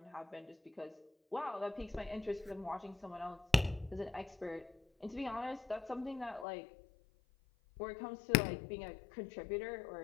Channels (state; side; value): drops out; right; at 6.5 s